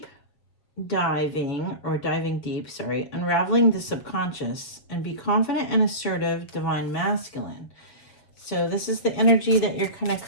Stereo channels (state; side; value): late; right; 7.3 ms